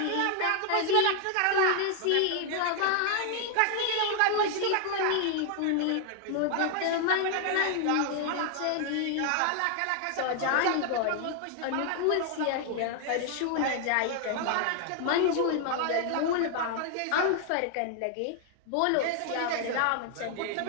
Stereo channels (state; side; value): different; both; correlation 0.00